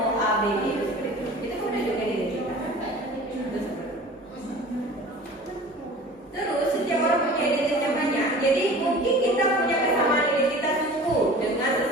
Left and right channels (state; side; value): normal; both; correlation 0.42